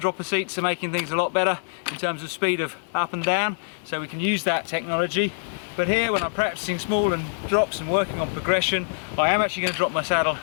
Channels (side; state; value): right; silent; digital silence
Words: seats are making things a lot better in terms of speed of up and down, so we can use that technology. But here, when I'm practicing small and drops and working on progression, I am actually going to drop my saddle